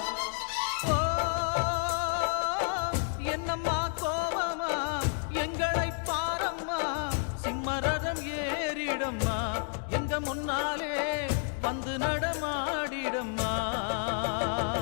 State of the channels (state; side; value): silent; right; 57 dB below the other